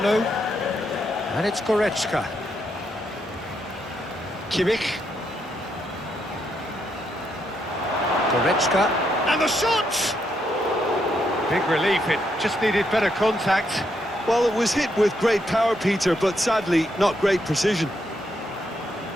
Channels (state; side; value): normal; both; correlation 0.78